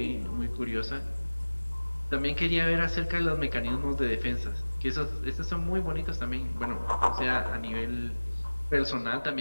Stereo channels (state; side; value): inverted; both; correlation -1.00